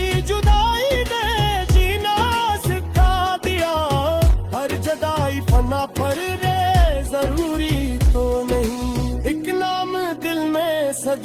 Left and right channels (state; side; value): identical; both; correlation 1.00